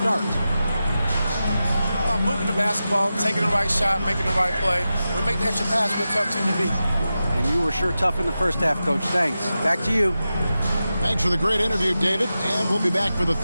moving the basketball, taking the right shot, making the right play. We make the extra pass, we're a tough team to beat. And you were sure tough in the first half, Coach. Thanks. Back to you. Thanks for the great interview, David. And we'll be back for the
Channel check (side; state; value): both; inverted; correlation -0.92